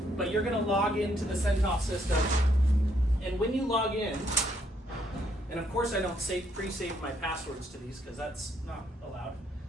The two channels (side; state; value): both; normal; correlation 0.72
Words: but you're going to log into the Centos system, and when you log in, and of course I don't pre-save my passwords to these because that's not allowed,